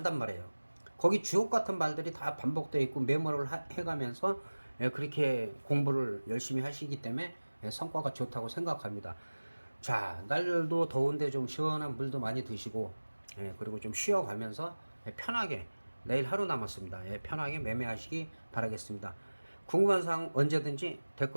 말이에요. 거기 주옥 같은 말들이 다 반복되어 있고 메모를 해가면서 그렇게 공부를 열심히 하시기 때문에 성과가 좋다고 생각합니다. 자, 날도 더운데 좀 시원한 물도 많이 드시고, 그리고 좀 쉬어가면서 편하게, 내일 하루 남았습니다. 편하게 매매하시기 바라겠습니다. 궁금한 사항 언제든지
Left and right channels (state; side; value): inverted; both; correlation -1.00